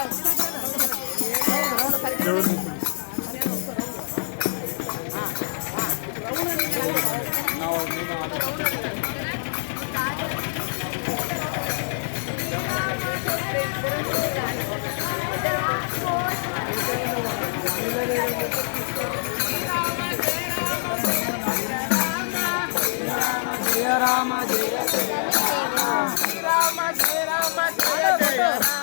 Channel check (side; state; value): right; silent; digital silence